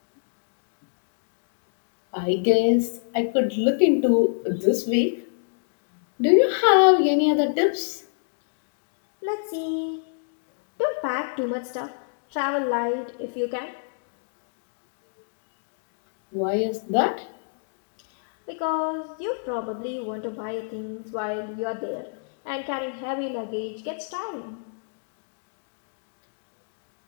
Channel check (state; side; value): silent; right; digital silence